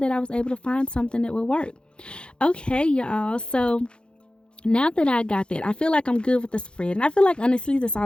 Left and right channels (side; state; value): right; late; 0.054 ms